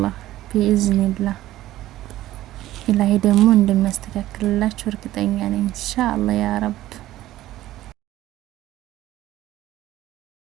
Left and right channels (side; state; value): left; quieter; 14.9 dB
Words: ቢኢዝኒላህ ኢላሂ ደግሞ እንደሚያስተካክልላችሁ እርግጠኛ ነኝ። ኢንሻአላህ ያ ረብ።